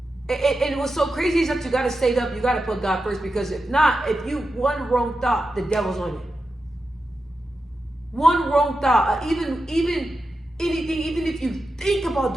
And what's so crazy is that you got to stay up, you got to put God first, because if not, if you one wrong thought, the devil's on it. One wrong thought, even anything, even if you think about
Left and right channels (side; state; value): both; normal; correlation 0.90